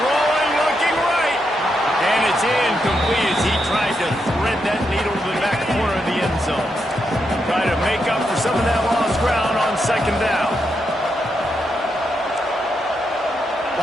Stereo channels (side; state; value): both; normal; correlation 0.82